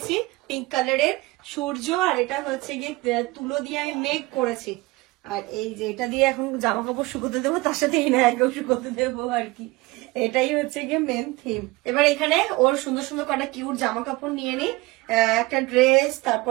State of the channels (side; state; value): left; quieter; 21.8 dB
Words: পিঙ্ক কালারের, সূর্য, আর এটা হচ্ছে গিয়ে তুলো দিয়ে আমি মেঘ করেছি। আর এই যে এটা দিয়ে এখন জামা কাপড় শুকোতে দেবো, তার সাথে ইনায়াকেও শুকোতে দেবো আর কি, এটাই হচ্ছে গিয়ে মেন থিম। এবার এখানে ওর সুন্দর সুন্দর কটা কিউট জামা কাপড় নিয়ে নি, একটা ড্রেস,